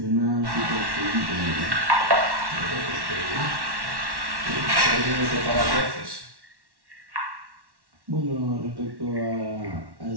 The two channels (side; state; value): left; late; 1.1 ms